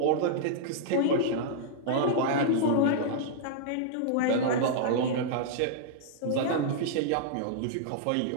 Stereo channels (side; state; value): both; different; correlation -0.02